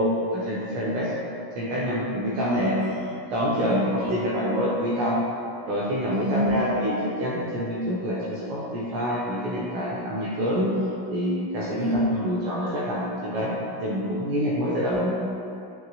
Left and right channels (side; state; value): left; late; 16 ms